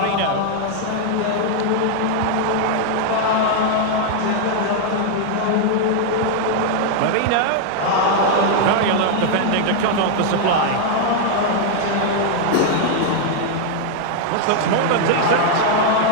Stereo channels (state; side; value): different; both; correlation 0.00